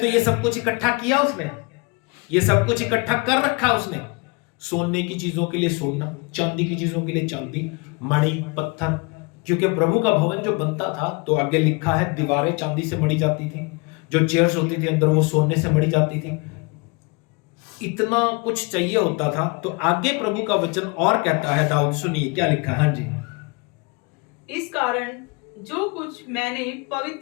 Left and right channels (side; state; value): right; quieter; 29.4 dB